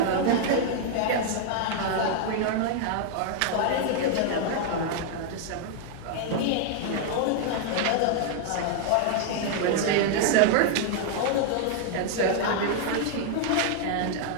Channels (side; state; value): both; different; correlation 0.00